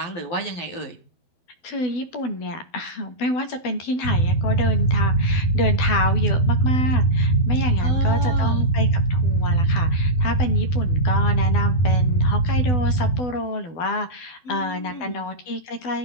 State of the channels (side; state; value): right; late; 12 ms